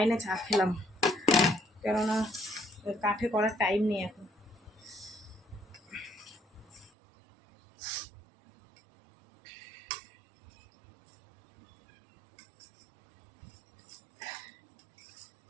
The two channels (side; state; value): left; drops out; at 6.9 s